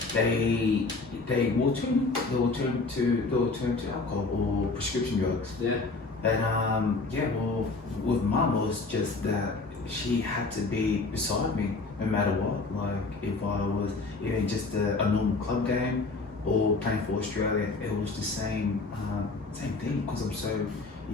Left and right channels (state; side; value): quieter; right; 3.7 dB